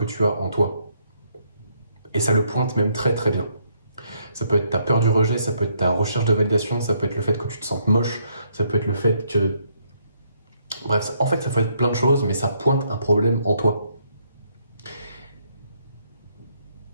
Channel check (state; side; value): inverted; both; correlation -0.72